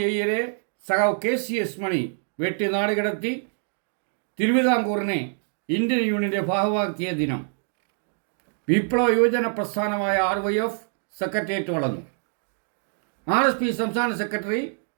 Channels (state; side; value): silent; left; digital silence